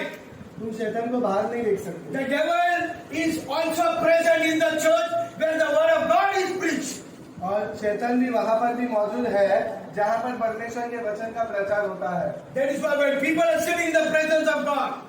तुम शैतान को बाहर नहीं देख सकते। The devil is also present in the church where the word of God is preached. और शैतान भी वहां पर भी मौजूद है जहां पर परमेश्वर के वचन का प्रचार होता है। That is why when people are sitting in the presence of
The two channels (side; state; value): both; identical; correlation 1.00